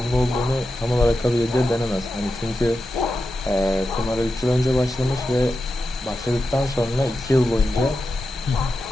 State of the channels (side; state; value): both; normal; correlation 0.90